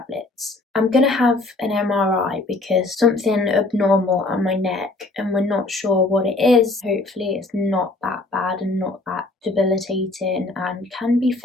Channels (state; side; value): quieter; right; 3.0 dB